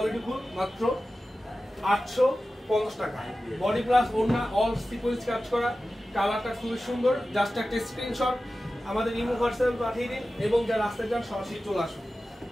মাত্র 850 টাকা, বডি প্লাস ওড়না, অল সিকোয়েন্স কাজ করা, কালারটা খুবই সুন্দর। জাস্ট একটা স্ক্রিনশট আমাদের ইমো হোয়াটসঅ্যাপে পাঠিয়ে দিন এবং যা রাস্তায় যান সরাসরি চলে আসুন।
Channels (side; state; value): both; normal; correlation 0.95